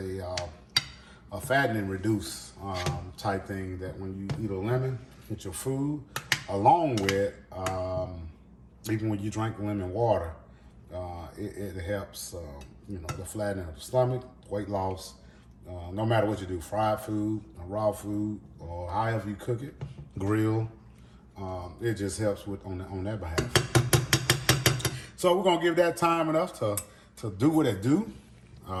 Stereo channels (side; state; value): both; identical; correlation 1.00